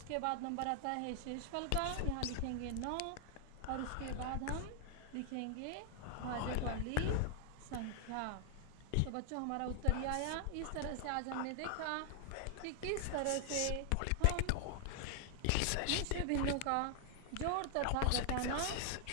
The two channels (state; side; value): different; both; correlation 0.00